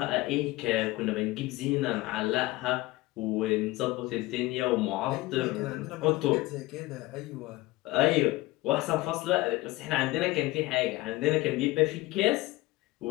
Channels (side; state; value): right; quieter; 19.5 dB